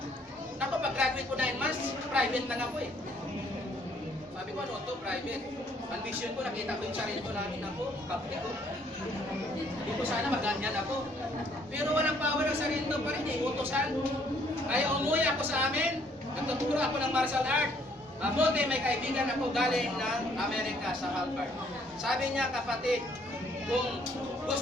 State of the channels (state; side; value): normal; both; correlation 0.65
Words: Ako, pag-graduate ko 9 months, private lang ako eh. Sabi ko, ano to, private. Ambition ko, nakita ko yung sarili ko namin ako, kapti ko. Hindi ko sana maganyan ako. Pero walang power ang sarili ko pa rin eh, utosan. Kaya umuwi ako sa amin, nagtuturo ako ng martial art. Mabuti may kaibigan ako galing ng Amerika sa Harvard. Sabi niya, kapatid, kung